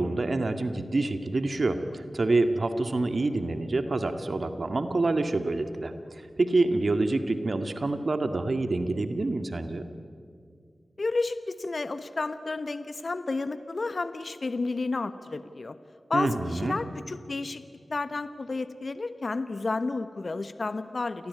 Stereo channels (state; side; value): normal; both; correlation 0.94